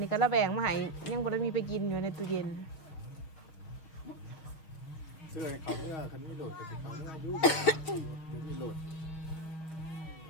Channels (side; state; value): right; late; 6.1 ms